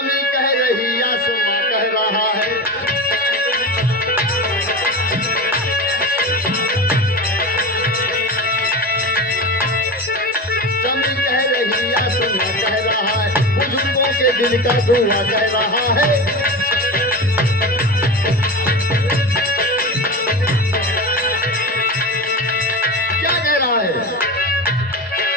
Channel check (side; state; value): both; normal; correlation 0.25